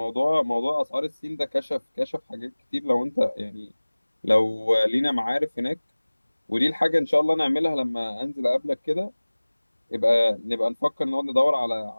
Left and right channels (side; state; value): both; inverted; correlation -1.00